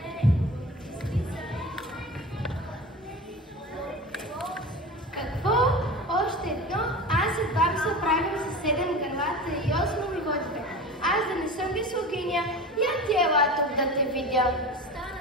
Какво? Още едно? Аз едва би се оправим с 7 гърлата и 8 угодите. Аз да не съм високиня, я ти ела тук да те видя. Стана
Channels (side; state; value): both; normal; correlation 0.32